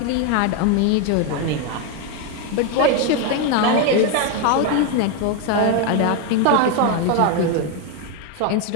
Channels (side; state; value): both; different; correlation 0.01